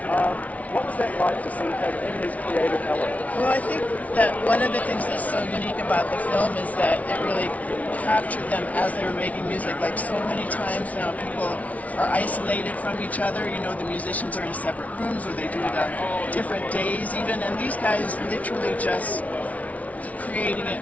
What was that like to see him in his creative element? Well, I think that one of the things that's so unique about the film is that it really captured them as they were making music. Like so many times now, people are isolated from each other. The musicians are in separate rooms, or they do it on different days even. And these guys literally just creating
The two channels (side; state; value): right; late; 0.069 ms